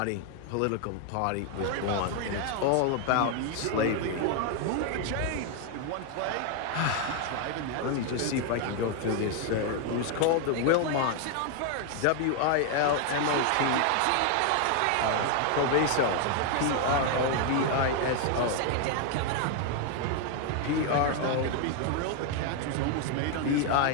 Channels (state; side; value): different; both; correlation 0.01